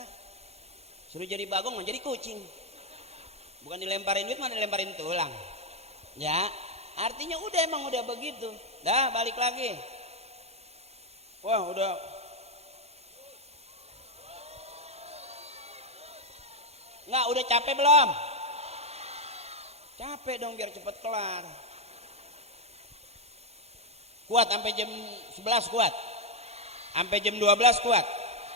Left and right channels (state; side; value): late; left; 0.31 ms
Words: Suruh jadi bagong mau jadi kucing. Bukan dilemparin duit, mana dilemparin tulang. Ya, artinya emang udah begitu. Dah balik lagi. Wah, udah. Enggak, udah capek belum? Capek dong biar cepet kelar. Kuat sampai jam 11 kuat. Sampai jam 12 kuat.